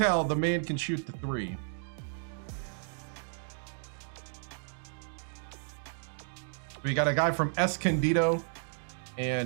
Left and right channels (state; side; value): silent; left; digital silence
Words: the man can shoot the 3. We got a guy from Escondido